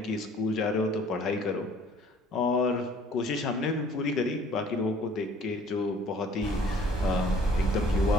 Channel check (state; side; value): normal; both; correlation 0.55